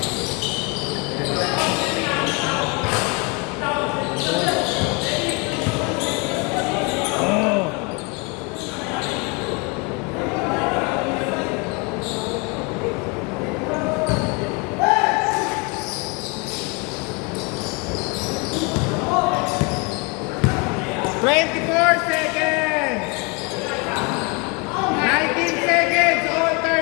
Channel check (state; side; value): quieter; right; 29.9 dB